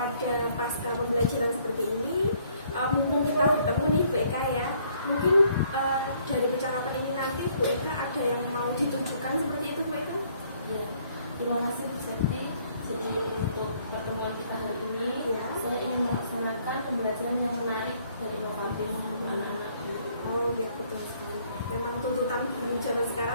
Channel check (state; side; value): inverted; both; correlation -0.64